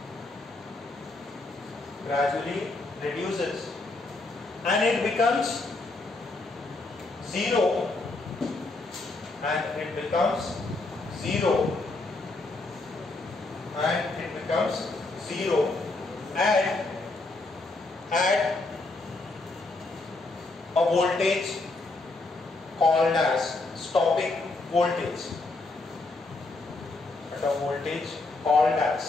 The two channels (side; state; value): right; quieter; 3.2 dB